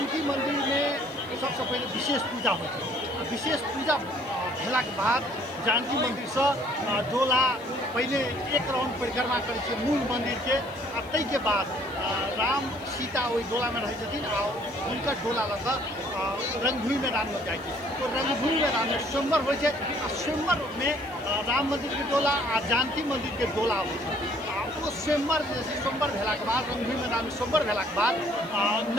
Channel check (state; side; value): noise; left; hiss, 26 dB below the sound